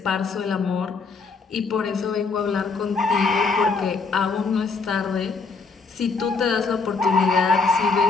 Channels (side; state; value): right; quieter; 4.4 dB